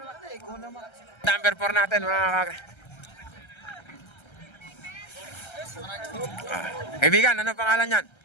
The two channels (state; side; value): late; right; 1.3 ms